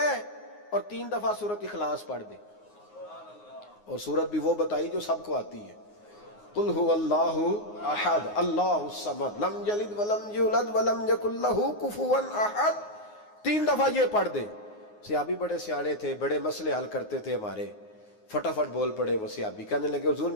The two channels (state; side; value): late; right; 9.6 ms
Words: اور 3 دفعہ سورۃ اخلاص پڑھ دے. اور سورت بھی وہ بتائی جو سب کو آتی ہے, قل هو اللہ احد اللہ الصمد لم یلد ولم یولد ولم یکن لہ کفوا احد. 3 دفعہ یہ پڑھ دے. صحابی بڑے سیانے تھے, بڑے مسئلے حل کرتے تھے ہمارے, فٹافٹ بول پڑے وہ صحابی, کہنے لگے حضور